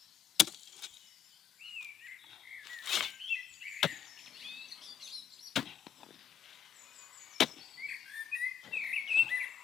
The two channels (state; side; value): quieter; right; 8.5 dB